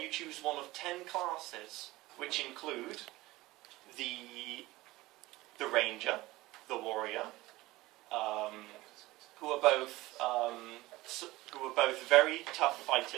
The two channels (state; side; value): quieter; left; 19.0 dB